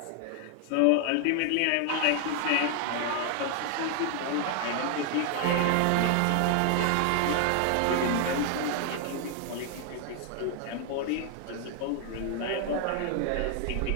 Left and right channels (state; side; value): different; both; correlation 0.00